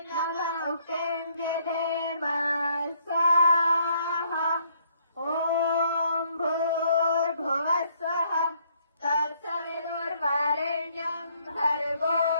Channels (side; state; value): both; inverted; correlation -0.67